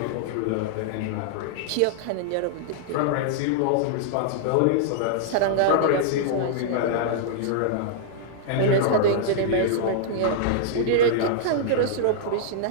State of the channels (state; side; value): different; both; correlation -0.02